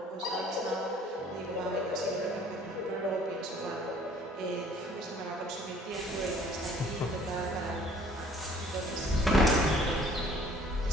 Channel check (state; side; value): normal; both; correlation 0.55